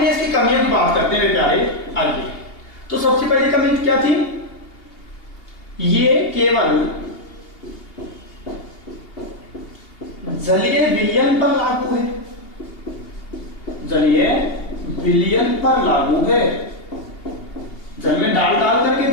की कमियों की बात करते हैं मेरे प्यारे। आइए, तो सबसे पहली कमी क्या थी? ये केवल जलीय विलयन पर लागू है, जलीय विलयन पर लागू है। जल में डाल डाल करके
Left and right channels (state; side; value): late; right; 2.8 ms